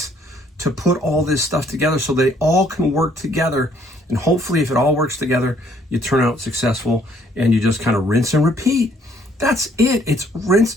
to put all this stuff together so they all can work together And hopefully if it all works together, you turn out successful and you just kind of rinse and repeat. That's it. It's rinse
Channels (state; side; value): normal; both; correlation 0.64